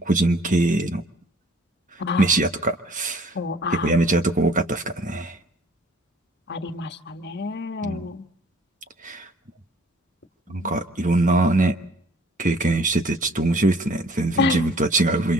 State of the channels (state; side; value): normal; both; correlation 0.55